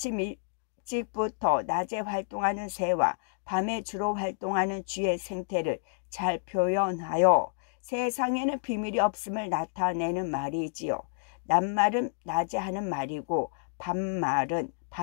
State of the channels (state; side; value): silent; right; digital silence